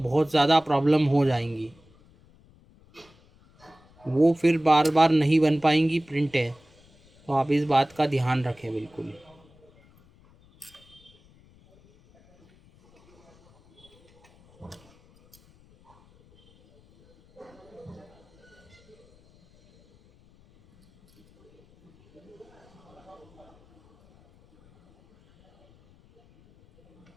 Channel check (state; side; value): noise; left; rumble, 29 dB below the sound